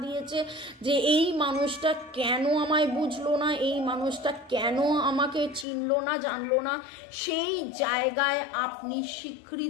দিয়েছে যে এই মানুষটা কেন আমায় বুঝলো না, এই মানুষটা কেন আমাকে চিনলো না, জানলো না। সেই জায়গায় আপনি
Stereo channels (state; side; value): drops out; right; at 5.7 s